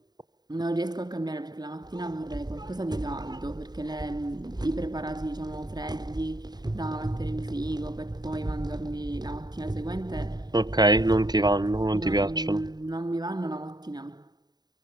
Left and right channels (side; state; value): left; late; 0.20 ms